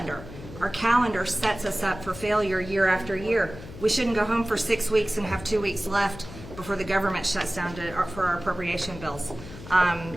Our calendar sets us up for failure year after year. We shouldn't go home for 6 weeks and have 2 weeks left before the government shuts down for our appropriation bills.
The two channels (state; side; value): noise; left; hum, 14 dB below the sound